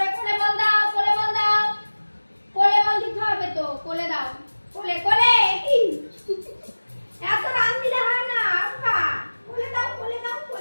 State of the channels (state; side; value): inverted; both; correlation -1.00